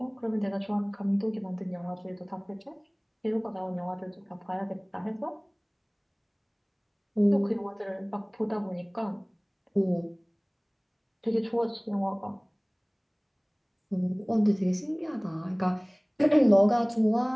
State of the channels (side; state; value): both; identical; correlation 1.00